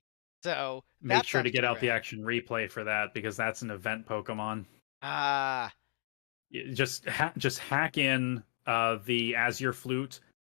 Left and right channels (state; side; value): silent; right; digital silence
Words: So Make that sure sounds to get pretty out the rad. action replay for that because that's an event Pokemon. Ah, Just hack in the Azure Flute.